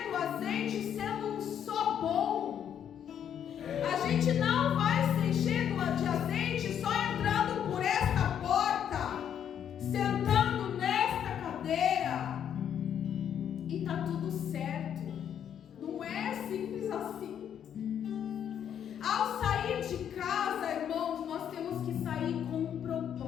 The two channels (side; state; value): right; quieter; 9.1 dB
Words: do azeite sendo só bom. A gente não vai se encher de azeite só entrando por esta porta, sentando nesta cadeira e tá tudo certo. Não é simples assim. Ao sair de casa, irmãos, nós temos que sair com um